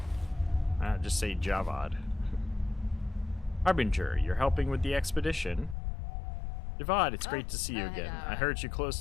Just say Javad. Harbinger, you're helping with the expedition. Javad, it's great to see you again. I heard you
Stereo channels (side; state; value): right; drops out; at 5.8 s